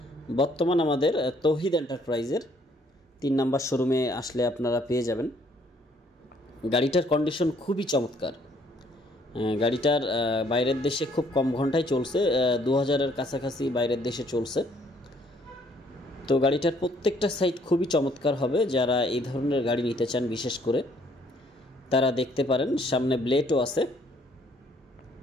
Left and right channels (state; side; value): normal; both; correlation 0.64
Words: বর্তমান আমাদের তৌহিদ এন্টারপ্রাইজের 3 নাম্বার শোরুমে আসলে আপনারা পেয়ে যাবেন। গাড়িটার কন্ডিশন খুবই চমৎকার। গাড়িটার বাইরের দেশে খুব কম ঘন্টায় চলছে, 2000-এর কাছাকাছি বাইরের দেশে চলছে। তো গাড়িটার প্রত্যেকটা সাইড খুবই চমৎকার হবে। যারা এই ধরনের গাড়ি নিতে চান বিশেষ করে তারা দেখতে পারেন। সামনে ব্লেডও আছে।